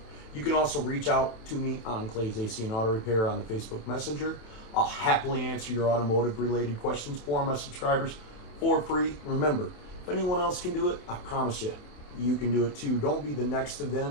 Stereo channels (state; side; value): late; right; 27 ms